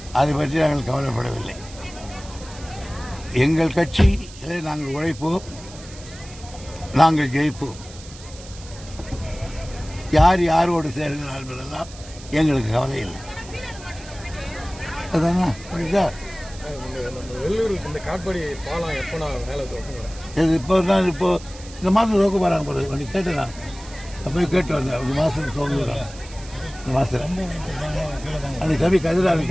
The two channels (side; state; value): right; noise; hiss, 18 dB below the sound